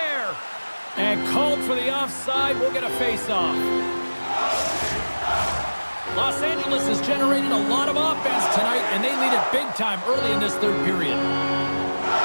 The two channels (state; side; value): inverted; both; correlation -1.00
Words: And called for the offside. We'll get a face-off. Los Angeles has generated a lot of offense tonight, and they lead it big time early in this third period.